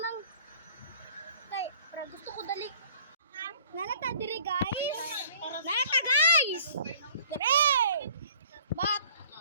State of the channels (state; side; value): inverted; both; correlation -0.54